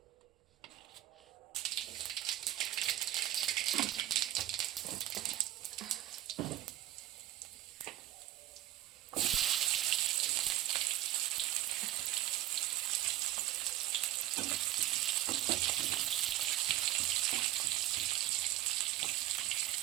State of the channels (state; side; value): quieter; left; 14.4 dB